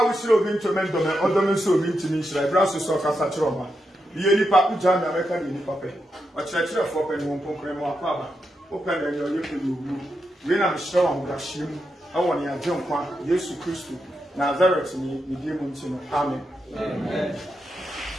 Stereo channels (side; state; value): both; normal; correlation 0.85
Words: wo sire obi ntomen do me odomen so obi ntimi hira braso so kasa kire oma ye nipa uja na America ni nipa pe o kire fo pe ni won ponkran mo akwa ba o pe na yo yepe do wu we na mhira wa da hiem awo ne agye nkwa Yesu Kristo Nazareth ni di mu ntino amen amen